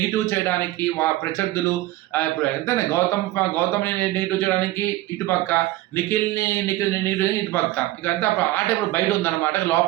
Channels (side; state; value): left; quieter; 16.8 dB